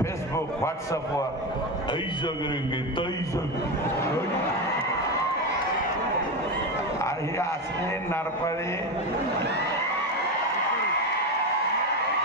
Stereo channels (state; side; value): normal; both; correlation 0.17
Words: व्हॉट्सअपवर हे असले नारपाळी